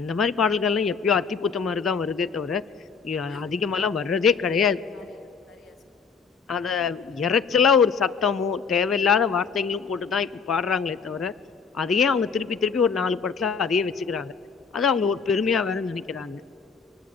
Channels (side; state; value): right; quieter; 5.7 dB